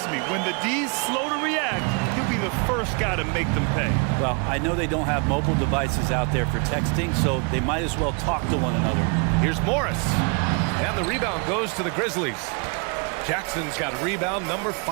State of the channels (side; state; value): left; quieter; 33.9 dB